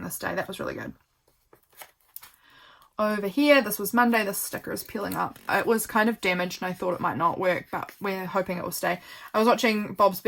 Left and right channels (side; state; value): both; identical; correlation 1.00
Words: this day. That was really good. Over here, this was Monday. This sticker is peeling up. It was kind of damaged and I thought it might not work, but we're hoping it will stay. I was watching Bob's